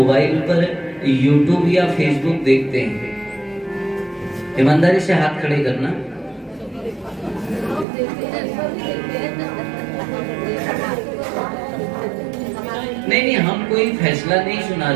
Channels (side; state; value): left; drops out; at 7.9 s